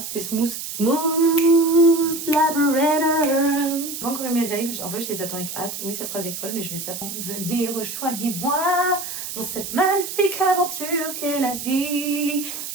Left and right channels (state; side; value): noise; right; hiss, 7 dB below the sound